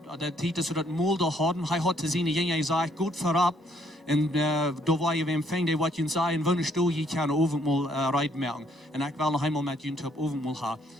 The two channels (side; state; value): both; normal; correlation 0.68